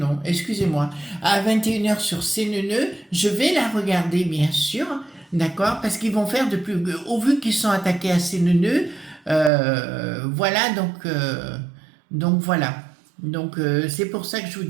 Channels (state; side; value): drops out; left; at 9.5 s